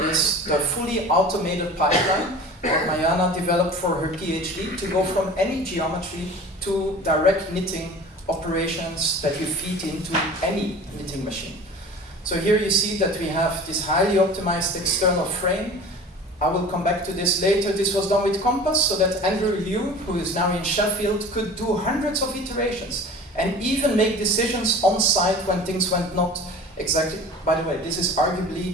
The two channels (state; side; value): normal; both; correlation 0.39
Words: is the fully automated pipeline that Mariana developed for her PhD to go from any geometry to direct knitting operations that you feed into any knitting machine. So here you see that we have this highly optimized external frame. I will come back to this later. This was done with Compass so that Andrew Liu, who is now in Sheffield, could do hundreds of iterations and even make decisions on site when things went not exactly. By the way, this is arguably